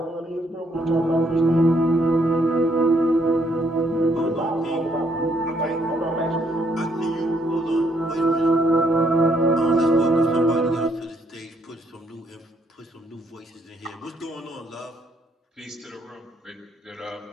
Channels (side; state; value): both; normal; correlation 0.71